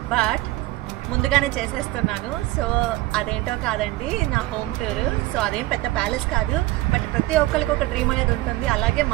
బట్ ముందుగానే చేసేస్తున్నాను. సో అదేంటో కాదండి, నా హోమ్ టూర్. సో అదేం పెద్ద ప్యాలెస్ కాదు, బట్ ప్రతి ఒక్కరికి ఒక డ్రీమ్ అనేది ఉంటుంది. అలాగే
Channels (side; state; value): left; quieter; 18.6 dB